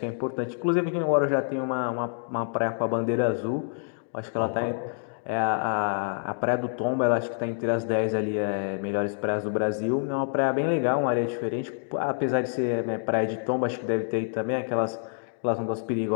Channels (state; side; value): silent; right; digital silence